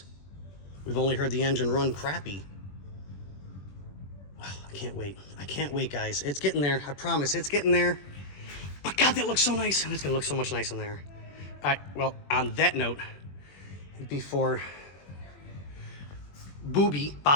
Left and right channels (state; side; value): late; right; 21 ms